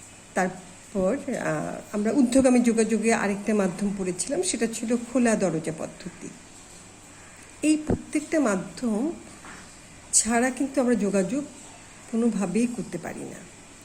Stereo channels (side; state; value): both; identical; correlation 1.00